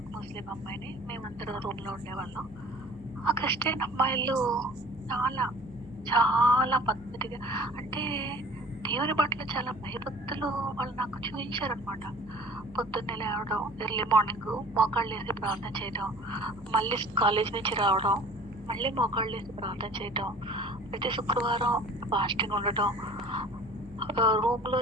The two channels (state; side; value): noise; right; hum, 23 dB below the sound